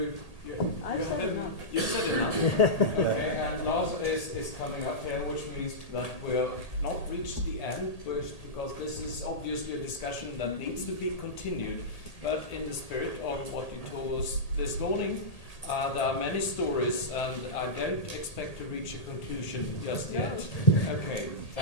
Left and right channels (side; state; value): right; late; 1.8 ms